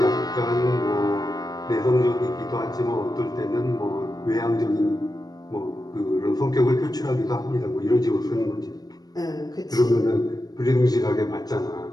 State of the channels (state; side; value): late; right; 0.19 ms